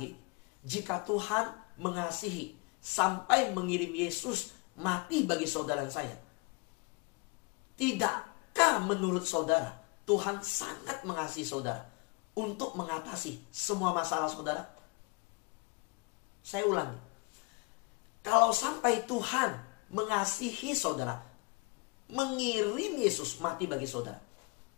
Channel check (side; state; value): right; quieter; 27.8 dB